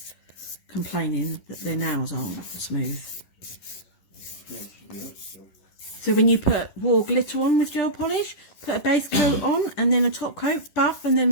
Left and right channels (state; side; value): late; right; 11 ms